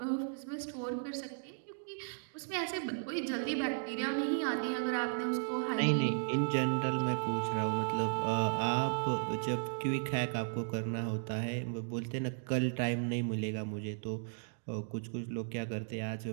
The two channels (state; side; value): silent; left; digital silence